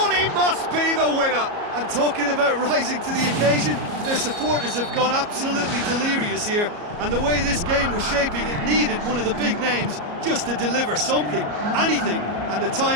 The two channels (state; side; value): late; left; 34 ms